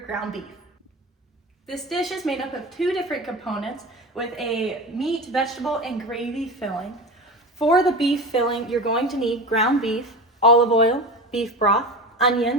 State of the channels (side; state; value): both; normal; correlation 0.28